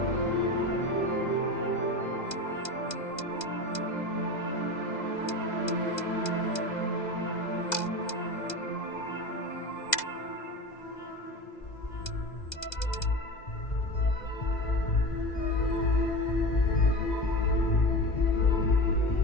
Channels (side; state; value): right; late; 2.0 ms